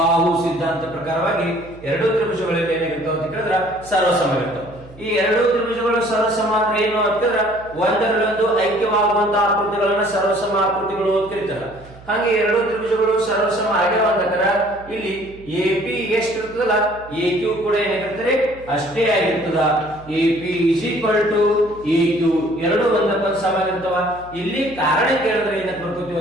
ಸಿದ್ಧಾಂತ ಪ್ರಕಾರವಾಗಿ ಎರಡು ತ್ರಿಭುಜಗಳಲ್ಲಿ ಏನಾಗಿರ್ತಾವ ಅಂತ ಕೇಳಿದ್ರ ಸರ್ವಸಮ ಇರ್ತಾವ. ಈ ಎರಡು ತ್ರಿಭುಜಗಳು ಸರ್ವಸಮ ಅಂದ್ರೆ ಏನು ಅಂತಂದ್ರ ಒಂದರಲ್ಲೊಂದು ಐಕ್ಯವಾಗುವಂತಹ ಆಕೃತಿಗಳನ್ನ ಸರ್ವಸಮ ಆಕೃತಿಗಳು ಅಂತ ಕರೀತಾರ. ಹಾಗೆ ಎರಡು ತ್ರಿಭುಜಗಳು ಸರ್ವಸಮ ಆಗ್ಯಾವಂದಕರ ಇಲ್ಲಿ ಎ ಪಿ ಎಷ್ಟು ಇರ್ತದಲ್ಲ ಎ ಕ್ಯೂ ಕೂಡ ಏನಾಗಿರ್ತಾರೆ ಅಷ್ಟೇ ಆಗಿರ್ತದ. A P is equal to A Q ಎರಡು ಒಂದಕ್ಕೊಂದು ಸಮ ಆಗಿರ್ತವ. ಇಲ್ಲಿ ಕಾರಣ ಕೇಳಿದ್ರೆ ಏನಕ್ಕೆ ಬರ್ಕೋತೀವಿ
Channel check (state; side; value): noise; right; hum, 21 dB below the sound